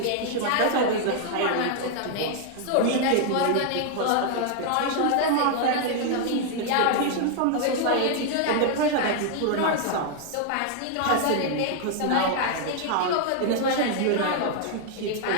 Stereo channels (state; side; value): different; both; correlation 0.00